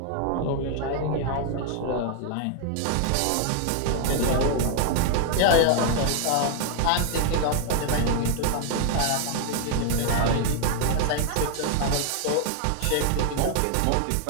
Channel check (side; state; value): both; different; correlation 0.00